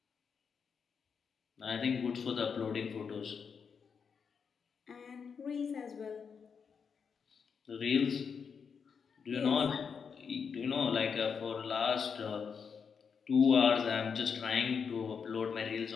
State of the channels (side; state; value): right; quieter; 6.2 dB